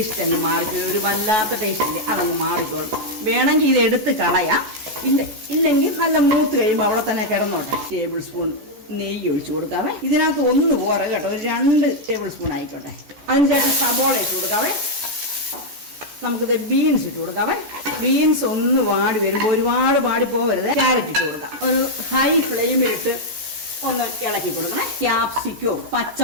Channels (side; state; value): left; late; 14 ms